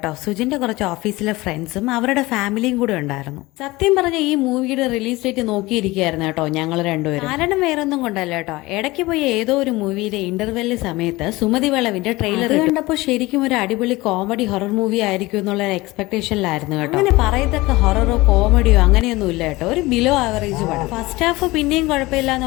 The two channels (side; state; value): right; quieter; 20.7 dB